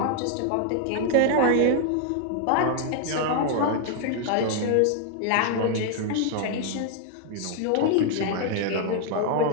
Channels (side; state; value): both; different; correlation 0.00